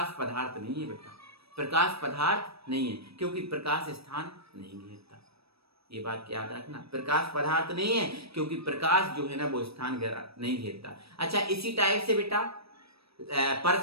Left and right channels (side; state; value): left; late; 0.77 ms